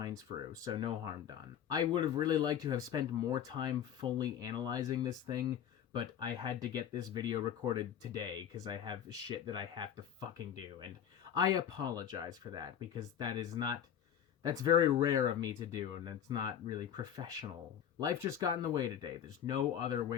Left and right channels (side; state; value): right; quieter; 9.3 dB